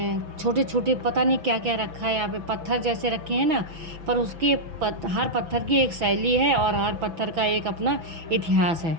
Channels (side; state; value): left; late; 6.0 ms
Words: छोटे छोटे पता नहीं क्या क्या रखा है यहाँ पे। पत्थर जैसे रखे हैं ना, पर उसकी हर पत्थर की एक शैली है और हर पत्थर का एक अपना इतिहास है,